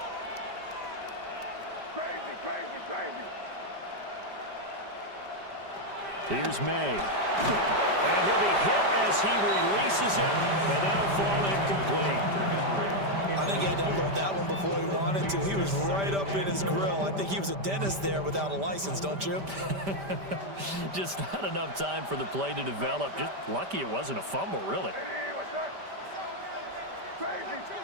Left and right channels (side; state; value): left; late; 5.1 ms